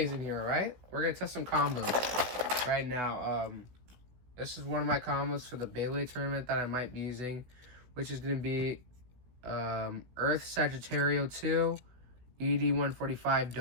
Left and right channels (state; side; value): late; left; 16 ms